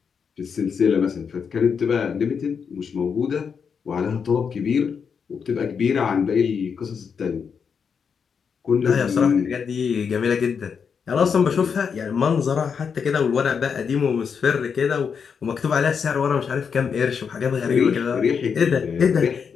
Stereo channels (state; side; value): quieter; right; 6.4 dB